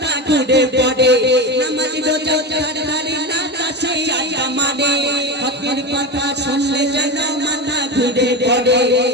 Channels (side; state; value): both; normal; correlation 0.21